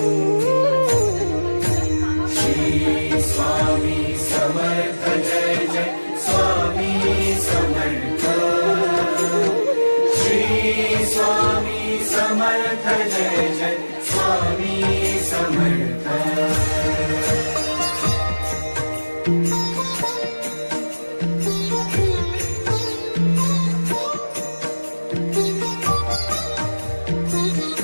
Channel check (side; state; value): both; inverted; correlation -1.00